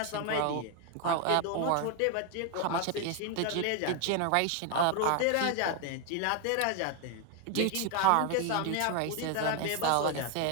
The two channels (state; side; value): different; both; correlation 0.01